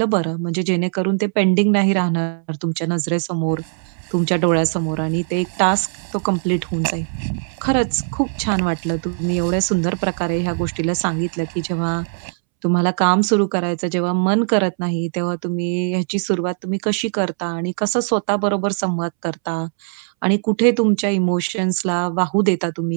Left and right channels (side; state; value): left; silent; 66 dB below the other